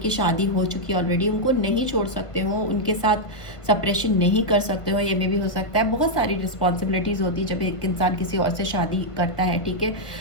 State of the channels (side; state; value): right; late; 1.5 ms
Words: शादी हो चुकी है ऑलरेडी, उनको नहीं छोड़ सकते हो, उनके साथ सप्रेशन नहीं कर सकते हो। ये में भी हो सकता है, बहुत सारी रिस्पॉन्सिबिलिटीज़ होती है जब एक इंसान किसी और से शादी करता है। ठीक है,